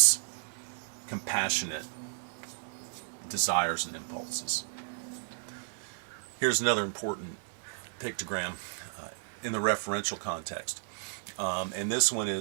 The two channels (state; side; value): silent; left; 56 dB below the other